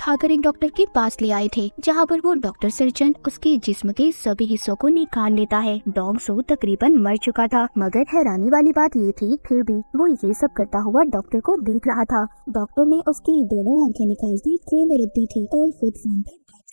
एक डॉक्टर के पास ले आए थे, जहाँ पर वो डॉक्टर सर्जन उसके जिस्म के सभी हिस्सों को निकाल लेता है। डोंगसू तकरीबन मर चुका था, मगर हैरानी वाली बात ये थी फिर भी वो ये सब करता हुआ डॉक्टर को देख रहा था। डॉक्टर ने उसकी दोनों आंखें निकाल दी ट्रे में रख दी थी और खुद फोन पर बात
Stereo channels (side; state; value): both; inverted; correlation -1.00